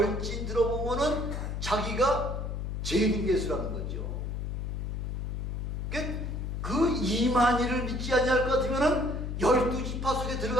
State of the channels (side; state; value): left; noise; hum, 3 dB below the sound